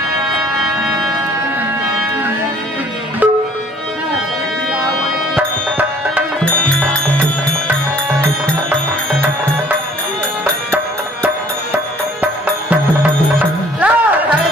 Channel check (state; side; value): normal; both; correlation 0.56